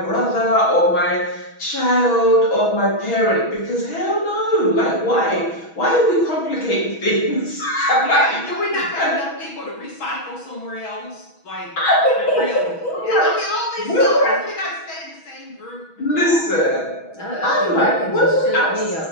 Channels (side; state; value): right; late; 6.2 ms